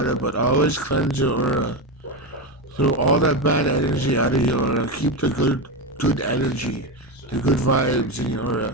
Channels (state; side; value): normal; both; correlation 0.14